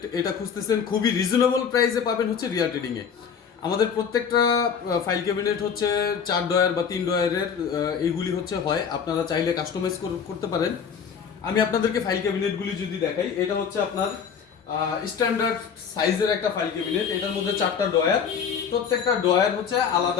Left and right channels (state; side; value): quieter; right; 6.9 dB